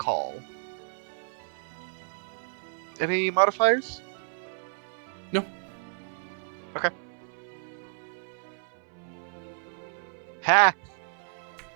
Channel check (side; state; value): left; silent; 57 dB below the other